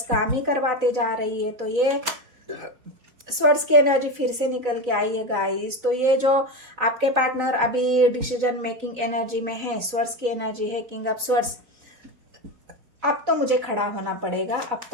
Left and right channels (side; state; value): left; late; 4.0 ms